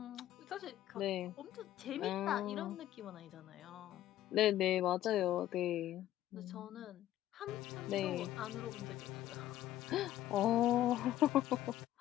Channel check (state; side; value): quieter; right; 13.4 dB